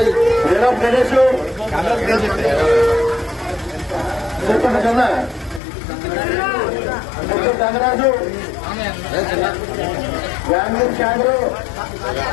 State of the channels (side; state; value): right; drops out; at 5.6 s